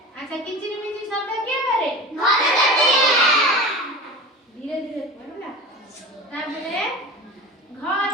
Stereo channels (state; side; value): normal; both; correlation 0.31